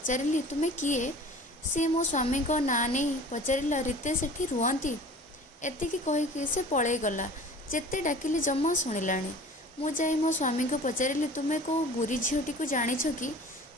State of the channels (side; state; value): both; normal; correlation 0.43